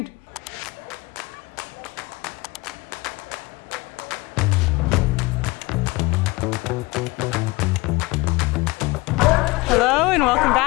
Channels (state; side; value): quieter; right; 22.9 dB